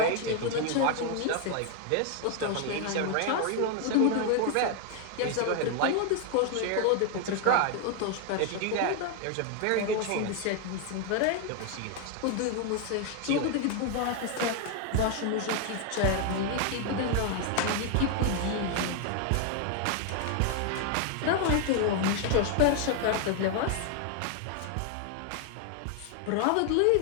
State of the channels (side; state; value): both; different; correlation 0.00